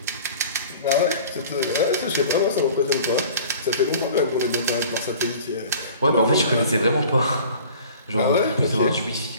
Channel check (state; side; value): inverted; both; correlation -0.45